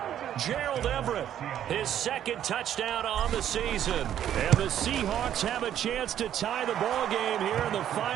Gerald Everett, his 2nd touchdown on the season. And the Seahawks have a chance to tie the ball game here in the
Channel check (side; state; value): left; quieter; 10.6 dB